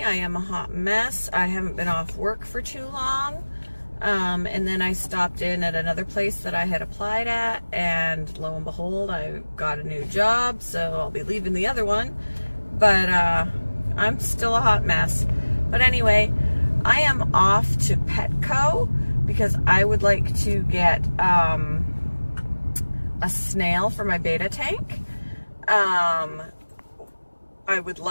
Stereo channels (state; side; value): inverted; both; correlation -1.00